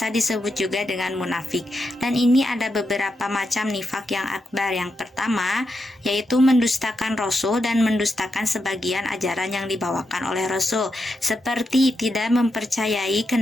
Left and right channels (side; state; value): both; normal; correlation 0.85